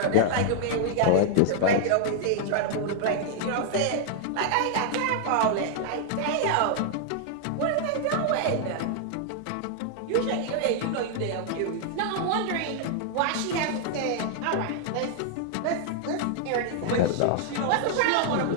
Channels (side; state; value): both; different; correlation 0.00